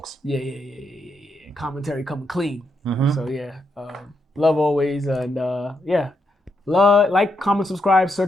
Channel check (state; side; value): normal; both; correlation 0.81